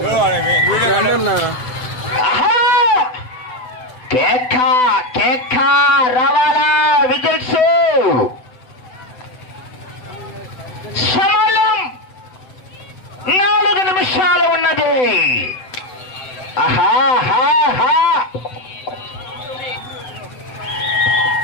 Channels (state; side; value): late; right; 7.9 ms